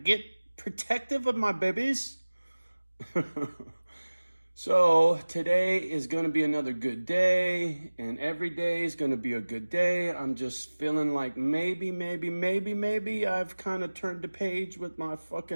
protective of my babies. So today is going to be another good day, and every day is going to be a good day. I'm just feeling like maybe I've kind of turned the page with my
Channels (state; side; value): inverted; both; correlation -1.00